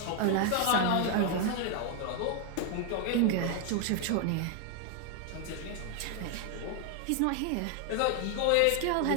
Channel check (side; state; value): both; different; correlation 0.00